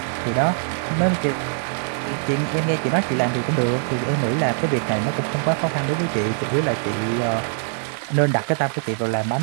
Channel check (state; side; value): silent; left; digital silence